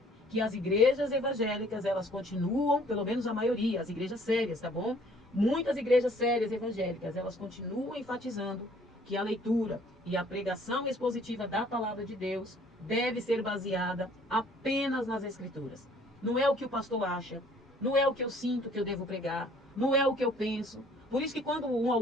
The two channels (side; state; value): both; normal; correlation 0.57